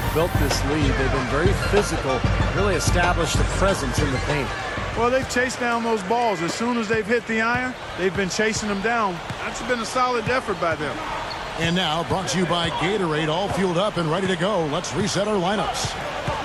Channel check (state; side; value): identical; both; correlation 1.00